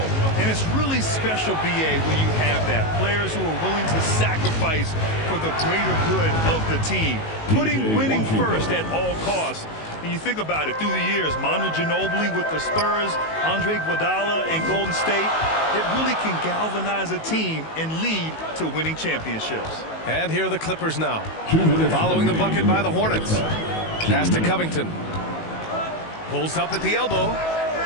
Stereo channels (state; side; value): late; right; 19 ms